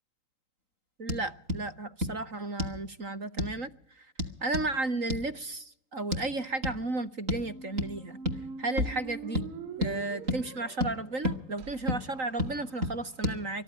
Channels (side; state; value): left; late; 3.8 ms